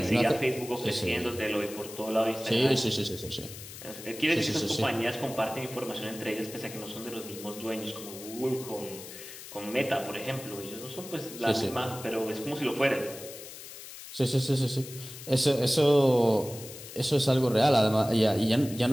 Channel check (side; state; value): left; noise; hiss, 13 dB below the sound